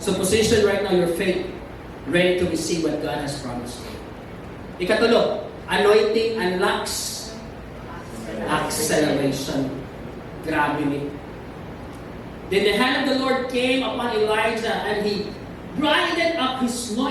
position right now your faith, ready to receive what God has promised you. Ikatulo, anointing unlocks acceleration. Grabe ni. Then the hand of the Lord came upon Elijah and he grinded up his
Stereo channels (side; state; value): both; identical; correlation 1.00